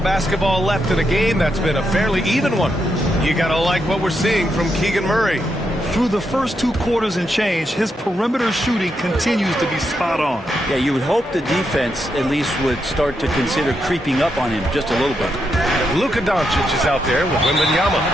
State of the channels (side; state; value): both; normal; correlation 0.82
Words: basketball left in a game that's been a fairly even one. You got to like what we're seeing from Keegan Murray. Through the first 2 quarters and change, his perimeter shooting continues to be spot on. Yeah, you would hope the defense at least would start to consider creeping up on him just a little bit. Luka Doncic is out there with Wembanyama.